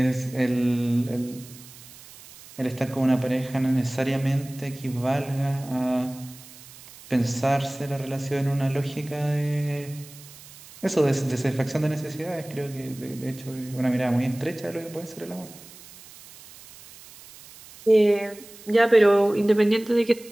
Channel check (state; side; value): noise; right; hiss, 20 dB below the sound